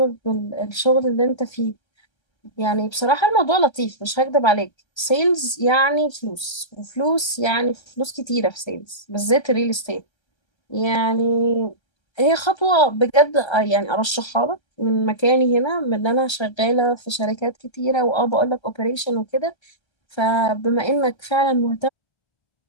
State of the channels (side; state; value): right; late; 1.3 ms